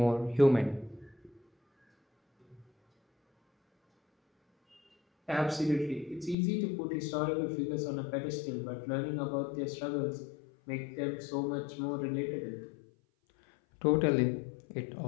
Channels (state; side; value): drops out; right; at 6.4 s